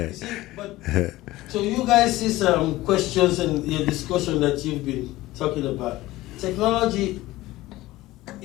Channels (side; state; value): right; quieter; 17.6 dB